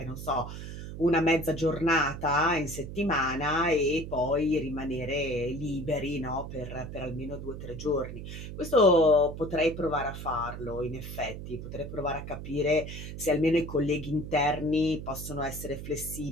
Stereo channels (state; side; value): noise; right; hum, 9 dB below the sound